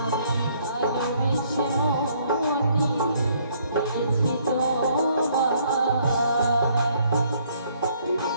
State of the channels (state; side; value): inverted; both; correlation -0.65